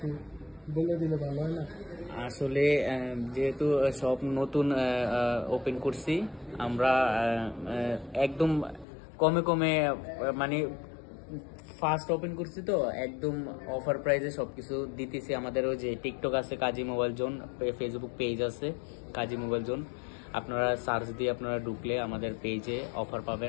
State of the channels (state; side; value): drops out; right; at 8.8 s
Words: বলে দিলে ভালো হয় না? আসলে যেহেতু সব নতুন ওপেন করছি আমরা, একদম কমে কমে, মানে ফার্স্ট ওপেন করছি তো একদম অফার প্রাইসে সবকিছু দিতেছি। আমাদের ওই যে টিকটক আছে কাজী মোবাইল জোন, ফেসবুক পেজ আছে কাজী মোবাইল জোন, আপনারা সার্চ দিয়ে আপনারা ঢুকলে আমাদের পেজে অফার